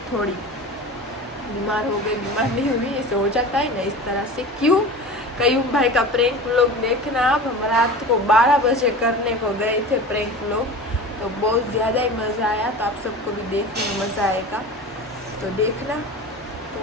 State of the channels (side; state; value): both; normal; correlation 0.33